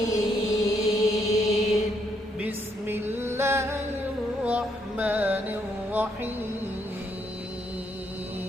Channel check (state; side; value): normal; both; correlation 0.74